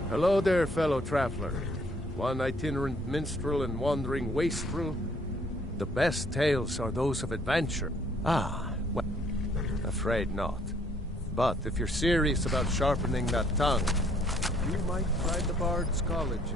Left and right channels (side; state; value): both; normal; correlation 0.64